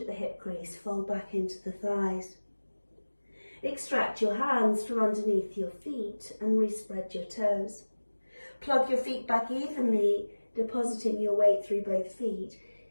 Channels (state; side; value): inverted; both; correlation -1.00